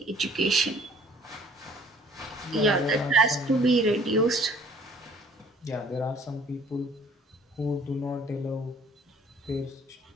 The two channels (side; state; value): both; normal; correlation 0.56